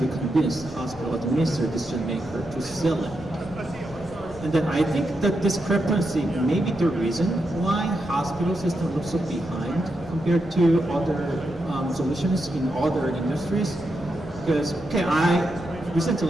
convince the hospital administrator decision maker to sell it. And then I think that discrepancy may be the reason why hospital system looks so behind compared to other solutions in other industries. Because,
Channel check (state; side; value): noise; left; rumble, 20 dB below the sound